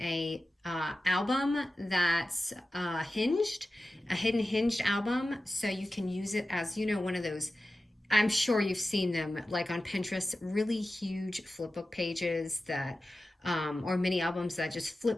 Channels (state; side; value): normal; both; correlation 0.94